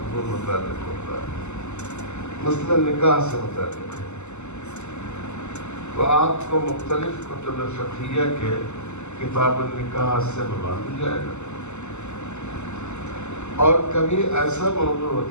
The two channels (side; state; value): right; late; 0.83 ms